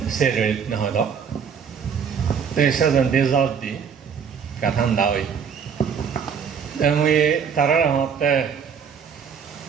4 রেত নহয় দ সেজন দেজাত দি কাঠান দাওই আমি তারা হতে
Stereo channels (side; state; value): left; quieter; 6.9 dB